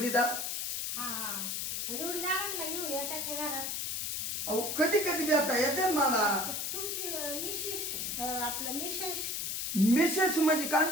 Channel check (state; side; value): noise; left; hiss, 2 dB below the sound